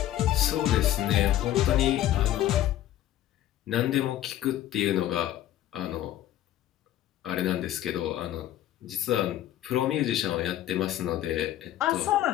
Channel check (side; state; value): right; quieter; 12.8 dB